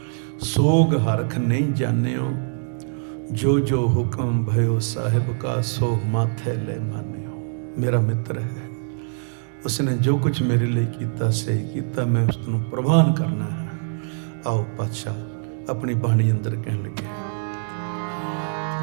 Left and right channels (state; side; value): silent; left; digital silence